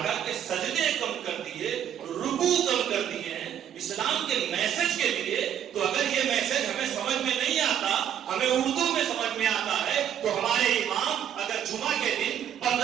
کے سجدے کم کر دیے، رکوع کم کر دیے ہیں اسلام کے میسج کے لیے، تو اگر یہ میسج ہمیں سمجھ میں نہیں آتا، ہمیں اردو میں سمجھ میں آتا ہے، تو ہمارے امام اگر جمعہ کے دن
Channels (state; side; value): quieter; left; 9.7 dB